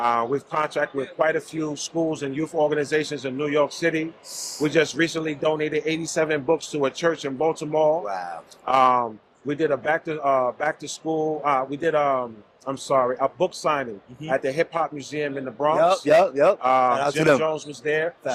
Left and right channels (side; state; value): both; identical; correlation 1.00